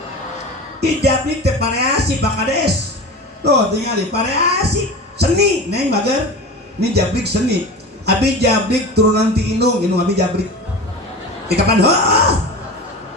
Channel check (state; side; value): normal; both; correlation 0.31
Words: Ijablik teh variasi Pak Kades. Tuh tinggali variasi seni neng bager. Ini jablik seni. Abi jablik turunan ti indung abi jablik. Di kapan